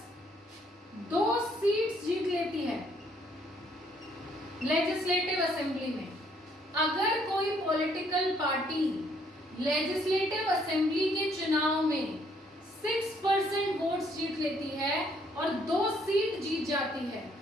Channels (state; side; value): normal; both; correlation 0.67